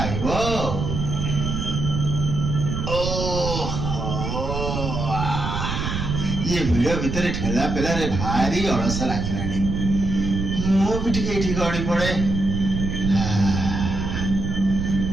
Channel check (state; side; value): noise; right; rumble, 3 dB below the sound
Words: ଇଏ ଭିଡ ଭିତରେ ଠେଲା ପେଲାରେ ଭାରି ଅଳସ ଲାଗିଲାଣି। ମୁଁ ବି ଟିକେ ଏଇଠି ଗଡି ପଡେ।